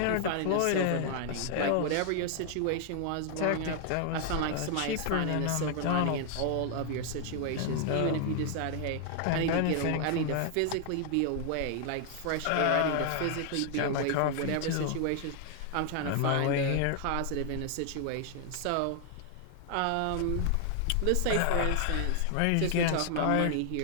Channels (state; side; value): different; both; correlation 0.00